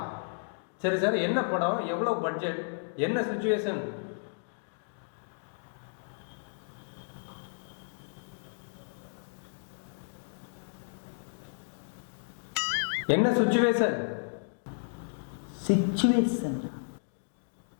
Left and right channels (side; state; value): right; silent; digital silence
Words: சரி சார். என்ன படம், எவ்வளவு பட்ஜெட், என்ன சிச்சுவேஷன்? என்ன சிச்சுவேஷன்? சிச்சுவேஷன்